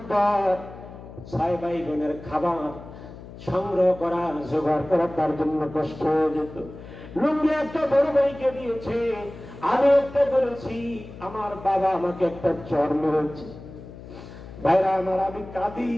6 ভাই বোনের খাবার সংগ্রহ করা, জোগাড় করা তার জন্য কষ্ট হয়ে যেত। লুঙ্গি একটা বড় ভাইকে দিয়েছে, আমি একটা বলেছি, আমার বাবা আমাকে একটা চর মেরেছে। ভাইরা আমার, আমি কাঁদি।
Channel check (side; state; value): left; noise; hum, 15 dB below the sound